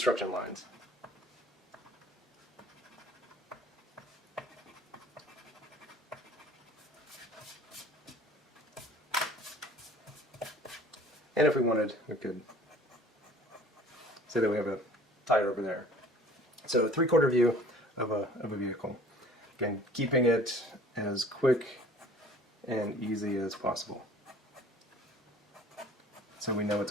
lines. And if we wanted, we could say that we have a tire over there. So 3/4 view of a vehicle. Again, keeping it as quick and easy as possible, so we know what's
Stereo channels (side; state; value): both; normal; correlation 0.49